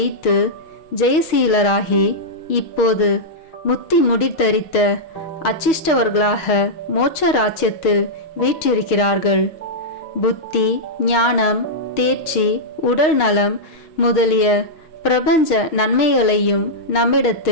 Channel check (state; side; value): late; right; 6.4 ms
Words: ஜெயசீலராகி இப்போது முத்தி முடித்தரித்த அச்சிஷ்டவர்களாக மோட்ச ராஜ்யத்தில் வீற்றிருக்கிறார்கள். புத்தி, ஞானம், தேர்ச்சி, உடல் நலம் முதலிய பிரபஞ்ச நன்மைகளையும்